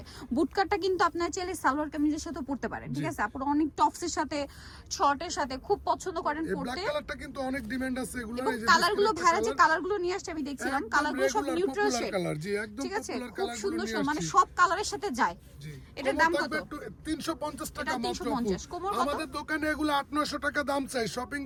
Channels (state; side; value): identical; both; correlation 1.00